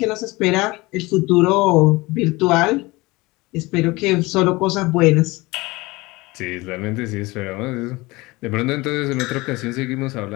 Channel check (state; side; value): quieter; right; 22.3 dB